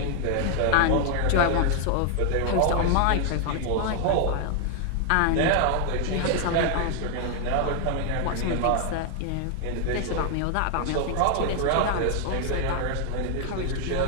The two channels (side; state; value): both; different; correlation 0.00